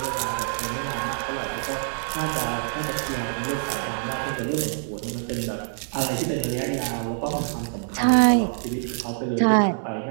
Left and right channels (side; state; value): left; silent; digital silence